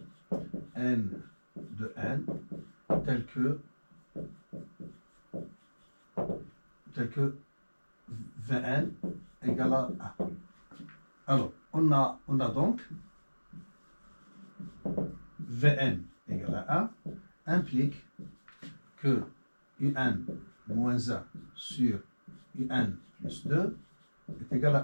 n de n tel que Vn égale à 1. Alors, on a donc Vn égale à 1 implique que Un moins 1 sur Un plus 2 est égal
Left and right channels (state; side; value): inverted; both; correlation -1.00